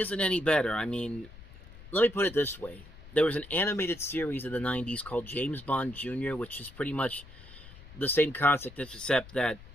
any better. I mean, let me put it this way. There was an animated series in the 90s called James Bond Jr., which is pretty much the same concept, except that,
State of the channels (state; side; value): noise; left; rumble, 18 dB below the sound